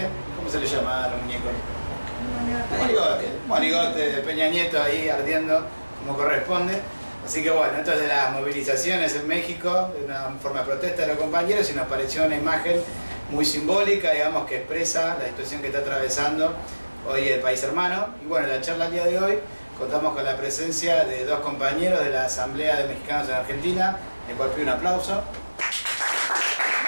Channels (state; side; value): inverted; both; correlation -1.00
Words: ¿Cómo se le llama a los muñecos? Monigote de Peña Nieto ahí ardiendo como corresponde. Así que bueno, esto es de las movilizaciones en México, de una forma de protesta de los compañeros, y nos pareció una imagen muy simbólica, digamos, que expresa la situación que está atravesando hoy el país hermano. Y bueno, en la charla del día de hoy contamos con la presencia de dos compañeros de la Asamblea de Mexicanos en Argentina, el cual pido un aplauso.